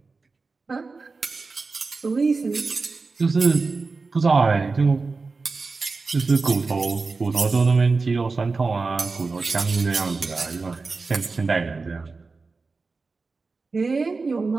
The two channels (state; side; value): quieter; left; 4.1 dB